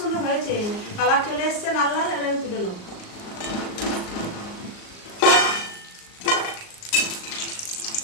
হয়েছে, কালার চলে এসছে লাল লাল। এবার আমি তুলে নেব।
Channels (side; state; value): right; late; 38 ms